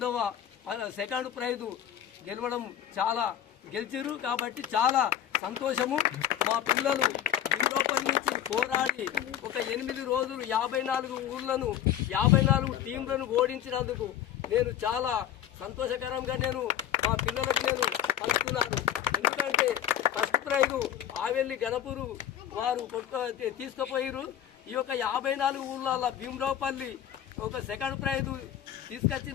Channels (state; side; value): quieter; right; 10.5 dB